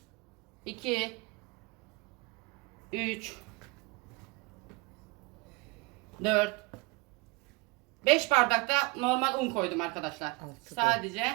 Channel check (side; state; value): left; quieter; 25.8 dB